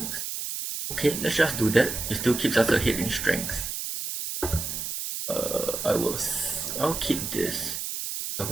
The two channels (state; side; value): noise; right; hiss, 4 dB below the sound